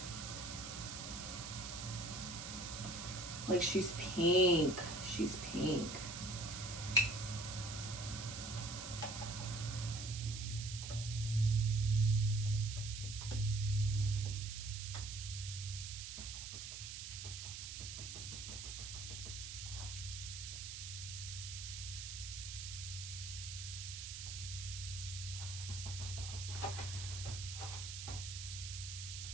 Like, she's pink. She's pink.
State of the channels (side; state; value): right; noise; hiss, 7 dB below the sound